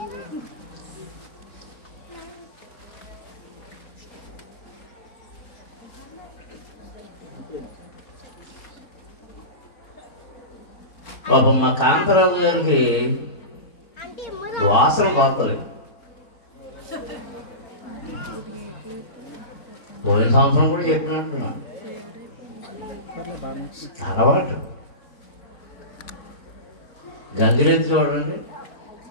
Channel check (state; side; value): late; right; 4.5 ms